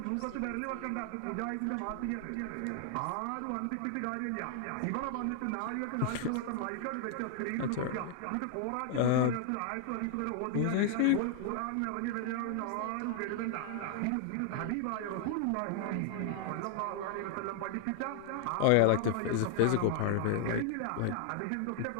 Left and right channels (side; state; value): both; different; correlation 0.00